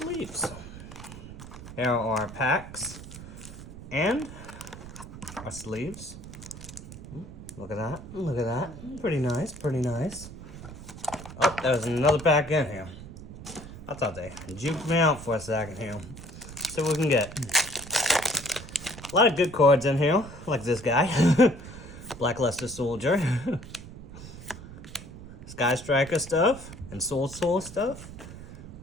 Here are our packs and our sleeves. Look at that. Look at that. Pretty nice. Pretty nice. Oh, there's another pack in here. I thought they juked me out for a second here. See what we can get. A lot of good cards in here, like this guy. Blackluster Soldier. Sky Striker stuff. And Soul stuff.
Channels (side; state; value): right; noise; rumble, 14 dB below the sound